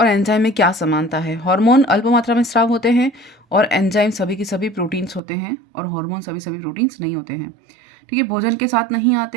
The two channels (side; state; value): left; drops out; at 5.2 s